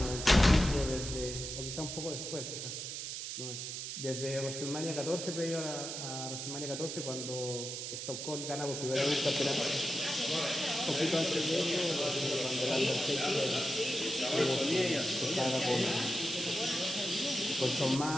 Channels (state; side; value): noise; right; hiss, 6 dB below the sound